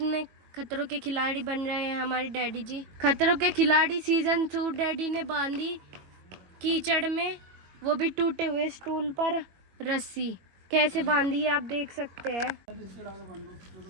खतरों के खिलाड़ी बन रहे हैं हमारे डैडी जी। खतरों के खिलाड़ी सीजन 2 डैडी ने बांधी कीचड़ में, वो भी टूटे हुए स्टूल पर रस्सी। कैसे बांधी है आप देख सकते हैं।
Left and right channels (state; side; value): late; left; 21 ms